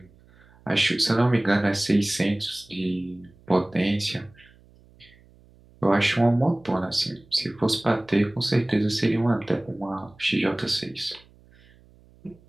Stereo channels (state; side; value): noise; right; hum, 28 dB below the sound